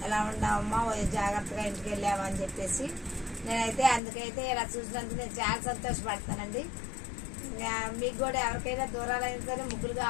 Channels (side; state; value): right; drops out; at 4.0 s